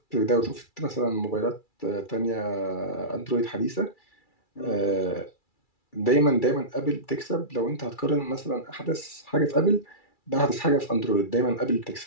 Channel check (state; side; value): late; right; 2.3 ms